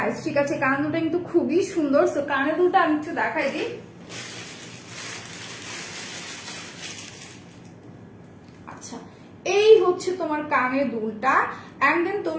ঠিক আছে, কানা দুটা কিন্তু খুবই সুন্দর। সো কানা দুটা আমি একটু দেখাই দিই। আচ্ছা, এই হচ্ছে তোমার কানের দুলটা। এন্ড দেন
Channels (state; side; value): identical; both; correlation 1.00